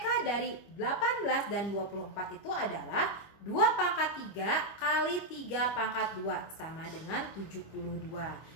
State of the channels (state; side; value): late; right; 25 ms